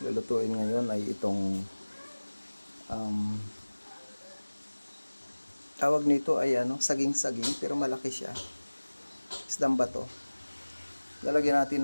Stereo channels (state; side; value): inverted; both; correlation -1.00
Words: lulutuin ngayon ay itong tawag nito ay saging-saging pero malaki siya. Isdang bato. Lalagyan